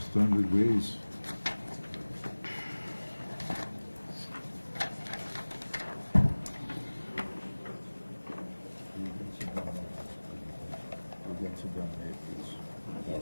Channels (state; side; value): inverted; both; correlation -1.00